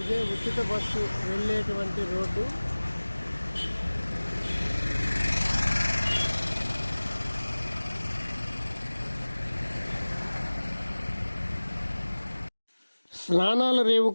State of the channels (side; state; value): both; inverted; correlation -1.00